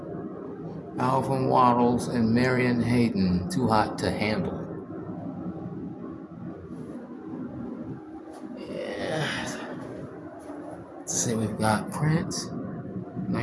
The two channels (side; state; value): both; identical; correlation 1.00